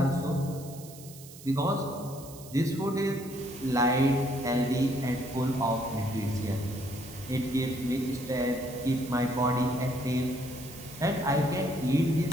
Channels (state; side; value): noise; right; hiss, 17 dB below the sound